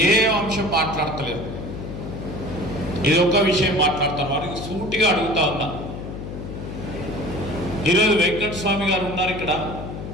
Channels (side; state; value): left; noise; hum, 8 dB below the sound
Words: అంశం మాట్లాడతలేదు. ఇది ఒక్క విషయం మాట్లాడతారు. వారికి సూటిగా అడుగుతా ఉన్నా, ఈరోజు వెంకటస్వామి గారు ఉన్నారు